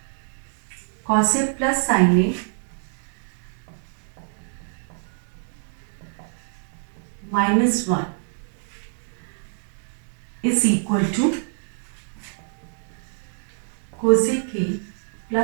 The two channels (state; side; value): silent; left; digital silence